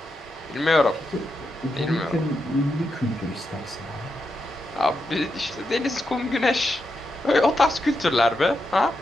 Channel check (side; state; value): both; normal; correlation 0.85